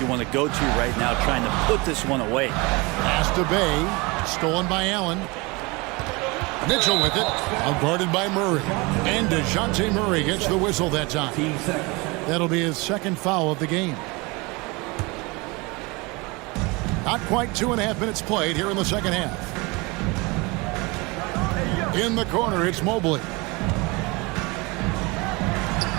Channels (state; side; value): quieter; left; 25.9 dB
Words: want to go to right now, trying to put this one away. Pass to Bay. Stolen by Allen. Mitchell with it. Guarded by Murray. And DeJounte Murray gets the whistle that time. That'll be his second foul of the game. Not quite 2.5 minutes played here in the second half. In the corner, it's Mobley.